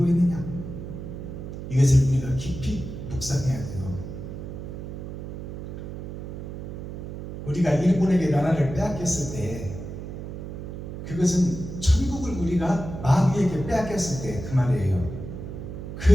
있느냐, 이것을 우리가 깊이 묵상해야 돼요. 우리가 일본에게 나라를 빼앗겼을 때 그것은 천국을 우리가 마귀에게 빼앗겼을 때 그 말이에요.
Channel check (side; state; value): right; noise; hum, 9 dB below the sound